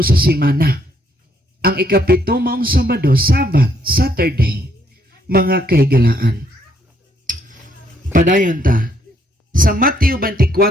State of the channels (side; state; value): both; normal; correlation 0.70